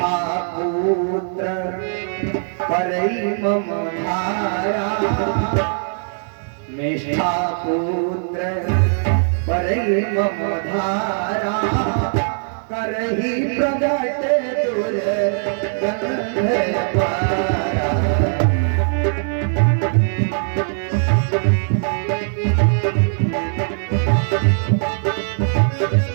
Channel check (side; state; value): left; silent; digital silence